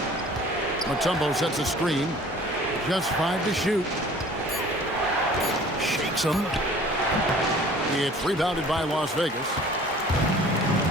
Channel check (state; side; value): normal; both; correlation 0.49